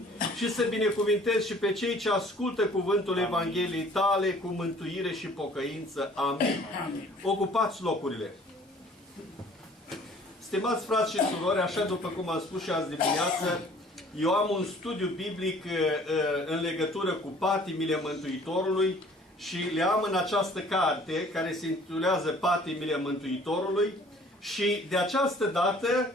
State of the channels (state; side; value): normal; both; correlation 0.53